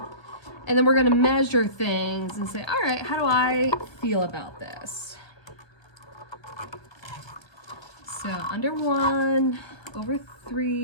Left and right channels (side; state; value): right; late; 1.2 ms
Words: and then we're gonna measure things and say, all right, how do I feel about this? So under 1, over